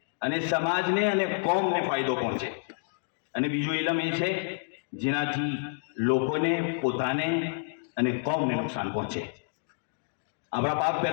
અને સમાજને અને કોમને ફાયદો પહોંચે, અને બીજું ઇલમ એ છે જેનાથી લોકોને, પોતાને અને કોમને નુકસાન પહોંચે. આપણા પાક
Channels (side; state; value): right; silent; digital silence